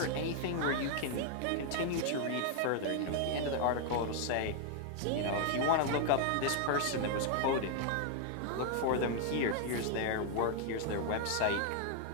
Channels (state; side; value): different; both; correlation 0.00